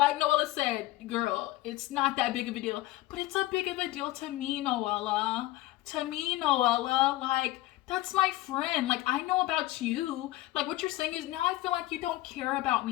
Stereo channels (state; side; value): quieter; right; 17.1 dB